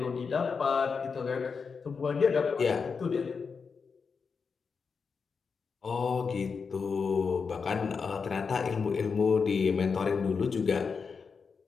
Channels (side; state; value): right; quieter; 5.4 dB